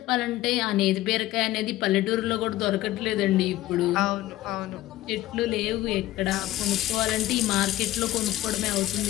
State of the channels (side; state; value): right; quieter; 15.5 dB